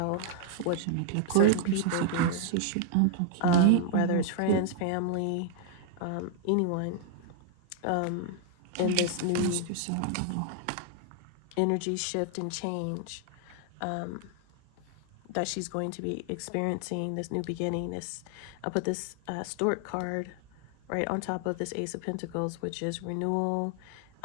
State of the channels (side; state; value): both; different; correlation -0.01